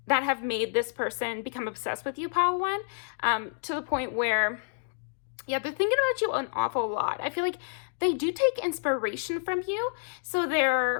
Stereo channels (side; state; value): right; silent; digital silence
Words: that have made this person become obsessed with you, Pile 1, to the point where, yeah, they're thinking about you an awful lot. I feel like they do take inspiration from you. So